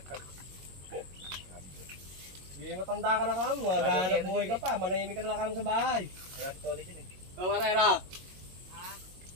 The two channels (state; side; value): late; left; 22 ms